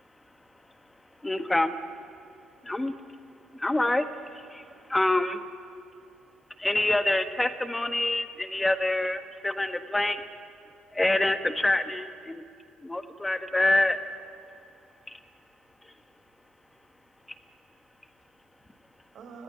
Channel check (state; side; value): normal; both; correlation 0.97